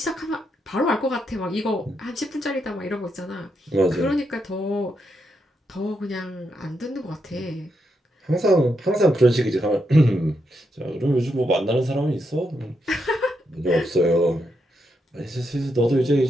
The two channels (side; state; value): both; normal; correlation 0.82